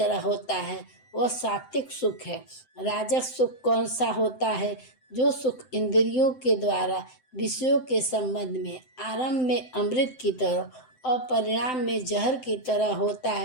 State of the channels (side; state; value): right; late; 7.8 ms